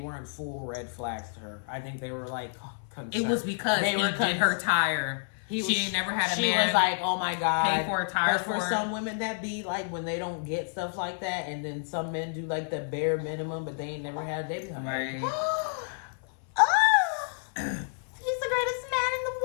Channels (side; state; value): right; silent; 56 dB below the other